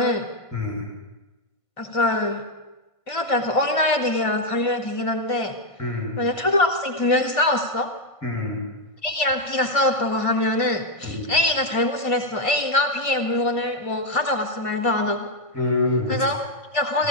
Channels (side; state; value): right; late; 1.5 ms